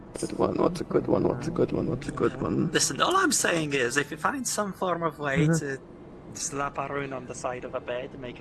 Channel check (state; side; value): identical; both; correlation 1.00